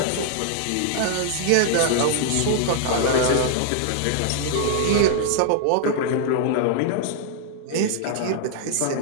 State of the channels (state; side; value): different; both; correlation -0.01